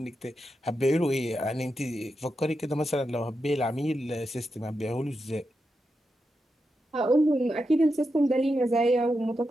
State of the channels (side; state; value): both; normal; correlation 0.87